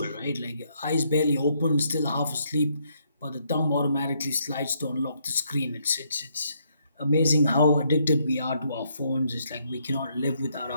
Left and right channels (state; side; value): inverted; both; correlation -0.73